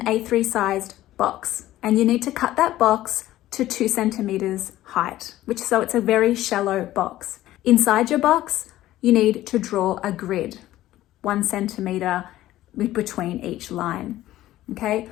A3 sized box, and you need to cut that box to 2 centimeters height, so it's a very shallow box. Inside your box, you need to draw a grid, 1 centimeter between each line. Okay,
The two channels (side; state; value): right; quieter; 14.8 dB